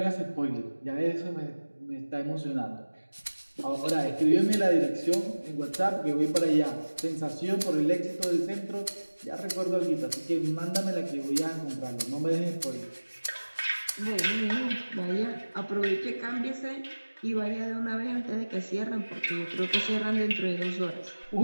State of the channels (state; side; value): inverted; both; correlation -1.00